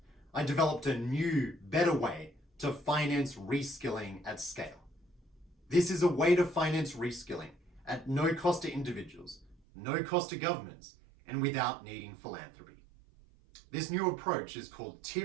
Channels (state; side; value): drops out; left; at 9.6 s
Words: I developed a new, better way to finance reskilling at scale. This is a way to finance reskilling at no cost to individuals, no cost to governments, and without needing philanthropy. This new approach is called